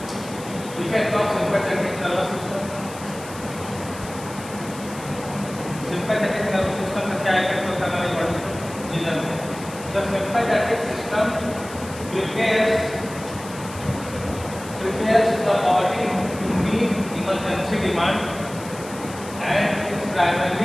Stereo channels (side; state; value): left; noise; hiss, 16 dB below the sound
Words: effect of sympathetic nervous system. Sympathetic nervous system का क्या इफेक्ट होता है हमारी बॉडी को, ये जानते हैं। The sympathetic system prepares the body to meet emergency demand and is